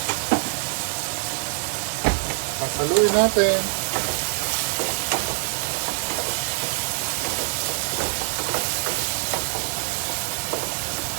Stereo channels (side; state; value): left; silent; digital silence